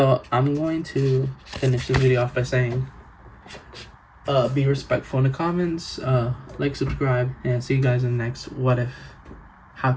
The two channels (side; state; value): both; identical; correlation 1.00